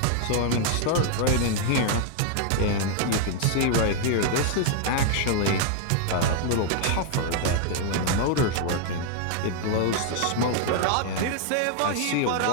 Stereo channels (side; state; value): both; different; correlation 0.00